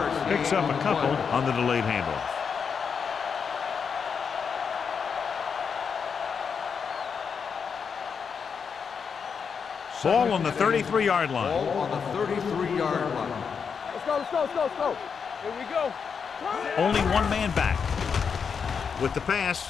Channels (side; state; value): right; quieter; 6.3 dB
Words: picks up a couple on the delayed handoff. Ball on the 33-yard line. Ball on the 33-yard line. Let's go. Here we go. Only one man back. With the